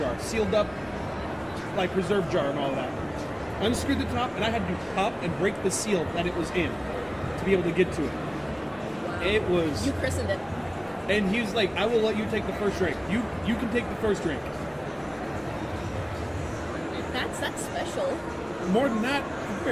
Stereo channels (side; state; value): both; identical; correlation 1.00